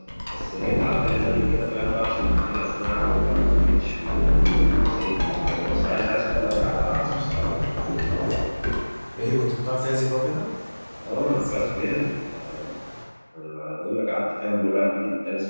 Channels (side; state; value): both; inverted; correlation -1.00